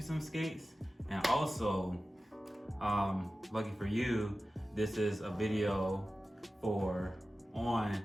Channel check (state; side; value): normal; both; correlation 0.95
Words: skates. And also, lucky for you, this is a video for on